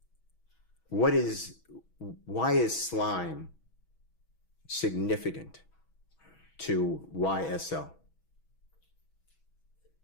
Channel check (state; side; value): late; right; 6.2 ms